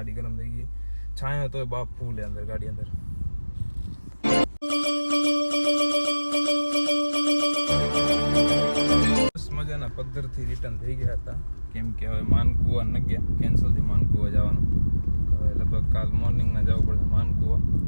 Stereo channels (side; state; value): both; inverted; correlation -1.00